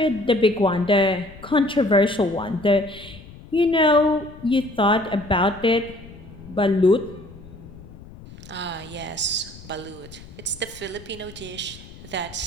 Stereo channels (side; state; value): left; noise; rumble, 18 dB below the sound